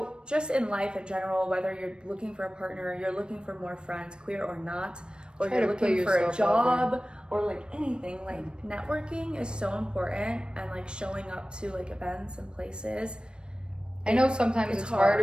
just in life in general, whether you're looking for a partner, you're looking for more friends, queer or not, or you're looking for a job or like anything, like networking is so important, and like showing up to like events and places. I know sometimes it's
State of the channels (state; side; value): late; left; 0.053 ms